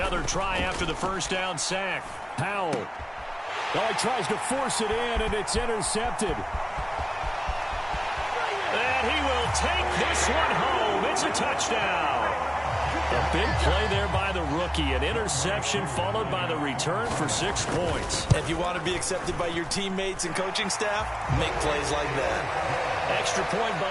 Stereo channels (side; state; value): both; identical; correlation 1.00